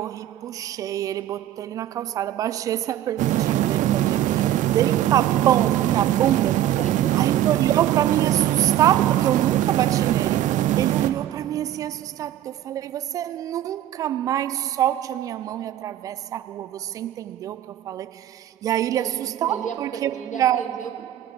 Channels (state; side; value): quieter; left; 12.1 dB